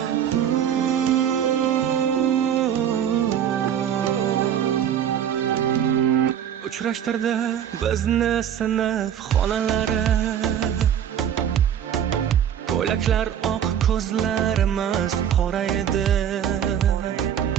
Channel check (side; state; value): left; quieter; 9.3 dB